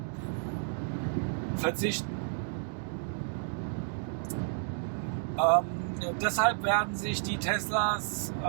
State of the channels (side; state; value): left; silent; digital silence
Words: verzichten. Deshalb werden sich die Teslas